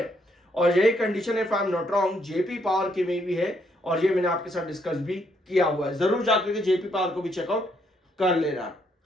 और यही कंडीशन है, if I am not wrong, JP power की में भी है, और ये मैंने आपके साथ डिस्कस भी किया हुआ है। जरूर जाकर के जेपी पावर को भी चेकआउट कर लेना।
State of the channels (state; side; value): normal; both; correlation 0.73